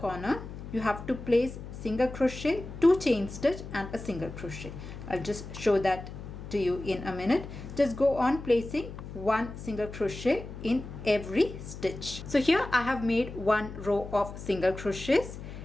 you have to place single crochet, 2 chain stitch and a single crochet. I'll just show that to you in a minute. Just go on placing 1 single crochet in every stitch. So here I have made 1 row of single crochets,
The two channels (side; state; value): left; noise; hum, 11 dB below the sound